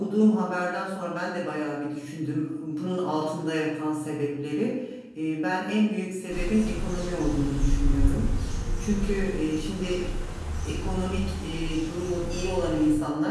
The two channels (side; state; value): both; identical; correlation 1.00